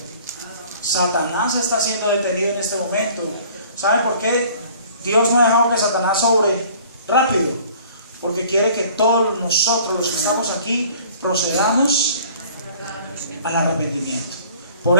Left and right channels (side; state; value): both; inverted; correlation -0.51